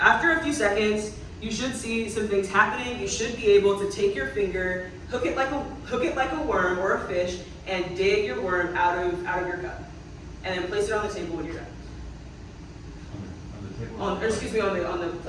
After a few seconds, you should see some things happening. You should be able to take your finger, hook it like a worm or a fish, and dig your worm out of your cup, and then place it on the table when you're done. On the table? On the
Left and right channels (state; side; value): identical; both; correlation 1.00